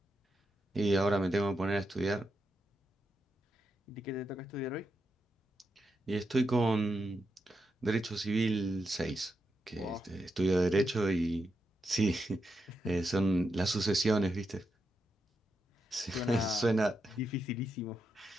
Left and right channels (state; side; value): normal; both; correlation 0.85